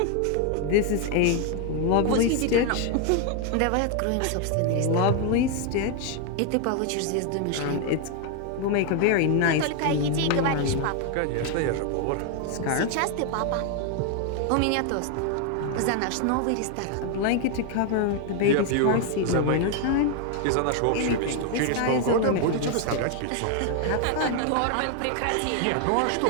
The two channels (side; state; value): both; different; correlation 0.00